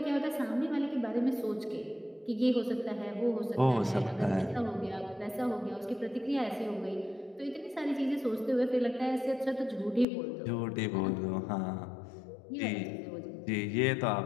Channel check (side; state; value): right; drops out; at 10.1 s